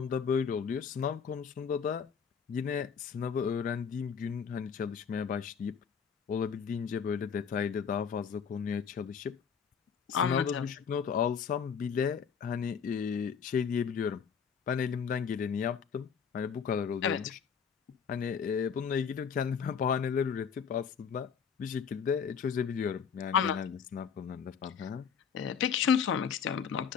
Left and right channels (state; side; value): quieter; right; 6.8 dB